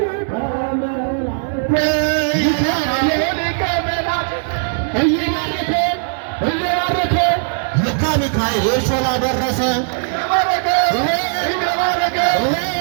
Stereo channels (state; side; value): silent; left; 59 dB below the other